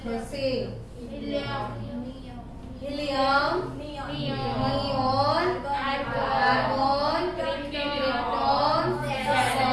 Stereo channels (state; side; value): identical; both; correlation 1.00